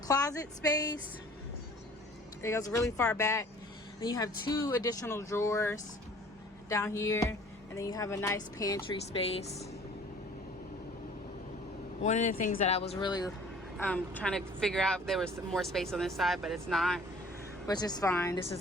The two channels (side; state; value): both; normal; correlation 0.50